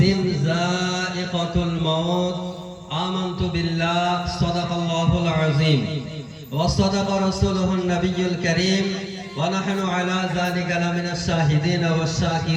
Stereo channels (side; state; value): both; identical; correlation 1.00